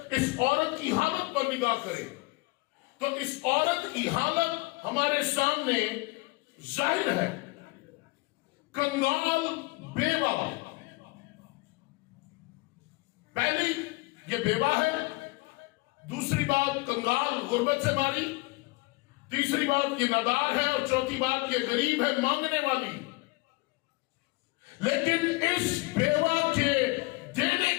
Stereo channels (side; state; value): right; quieter; 24.3 dB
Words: औरत की हालत पर निगाह करें, तो इस औरत की हालत हमारे सामने जाहिर है। कंगाल बेवा, पहली ये बेवा है, दूसरी बात कंगाल गुर्बत से मारी, तीसरी बात ये नादार है, और चौथी बात ये गरीब है, मांगने वाली। लेकिन इस बेवा के देने